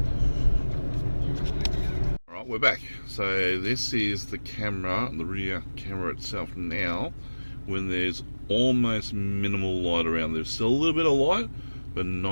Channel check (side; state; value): both; inverted; correlation -1.00